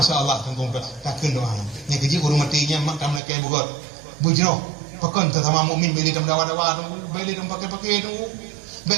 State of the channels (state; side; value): drops out; left; at 3.2 s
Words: tengkong takkan doa yang kecil orang matinya mak kam nak kai buat bujro pakon sama mukmin beli dam dawa-dawa beli dam pakai-pakai tu